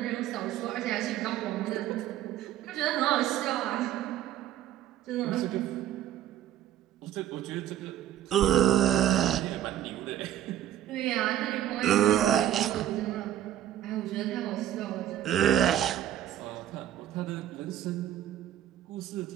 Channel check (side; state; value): left; quieter; 11.8 dB